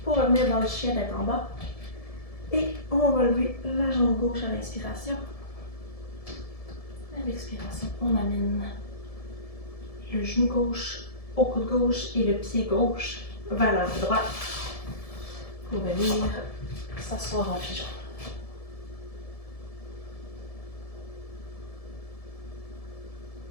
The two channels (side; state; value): right; late; 1.7 ms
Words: pour revenir dans le chien tête en bas. Et on va lever la jambe gauche à l'inspiration. À l'expiration, on amène le genou gauche au coude gauche et le pied gauche vers la main droite pour venir s'asseoir en pigeon.